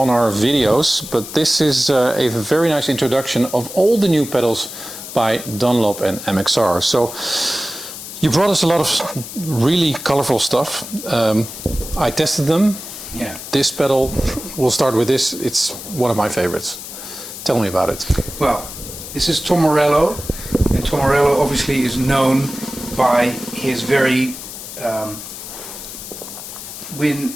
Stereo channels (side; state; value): left; noise; hiss, 11 dB below the sound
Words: our videos, but this is a very nice introduction of all the new pedals by Dunlop and MXR. So you brought us a lot of really colorful stuff. I tested them. Yeah. This pedal, we'll start with this. It's one of my favorites. Tell me about it. Well, this is Tom Morello, and Tom Morello obviously is known by his very